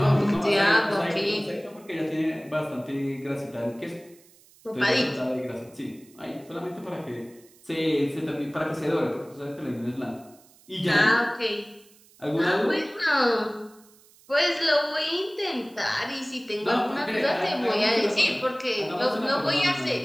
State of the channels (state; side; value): noise; right; hiss, 27 dB below the sound